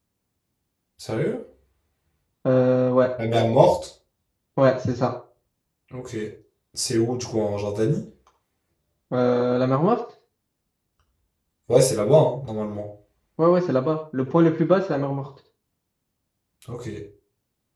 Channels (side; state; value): both; identical; correlation 1.00